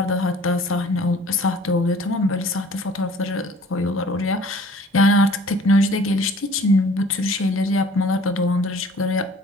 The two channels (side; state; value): both; normal; correlation 0.51